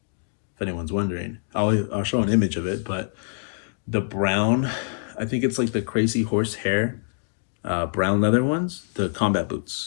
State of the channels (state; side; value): silent; right; digital silence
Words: if anyone's wondering, I'll show an image of it, but the brown, I think it's like the crazy horse hair, brown leather ones, the combat